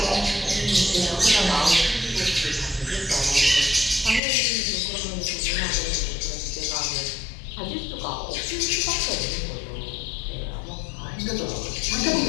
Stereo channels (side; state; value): right; drops out; at 4.2 s